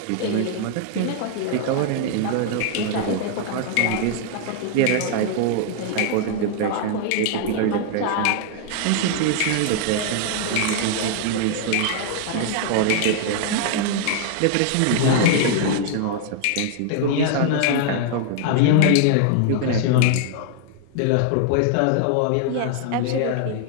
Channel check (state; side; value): different; both; correlation 0.00